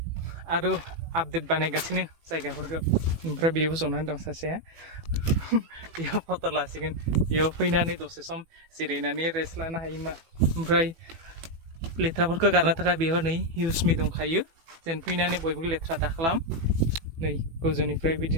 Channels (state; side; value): late; left; 18 ms